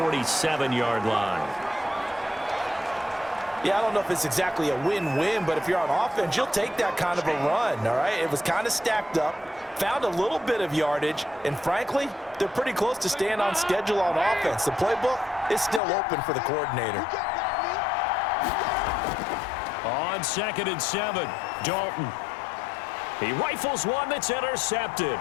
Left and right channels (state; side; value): drops out; right; at 15.8 s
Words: line. Yeah, I don't know if it's exactly a win-win, but if you're on offense, you'll take that kind of a run, all right? It was kind of stacked up, found a little bit of yardage, and frankly, they're pretty close to staying on schedule on offense. The playbook is still open for the coordinator. On 2nd and 7, Dalton. He rifles one that's intercepted.